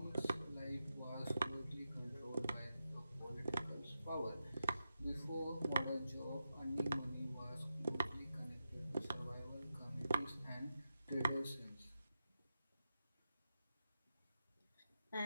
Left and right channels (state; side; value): inverted; both; correlation -0.88